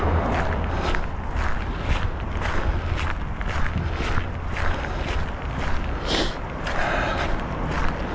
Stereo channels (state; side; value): identical; both; correlation 1.00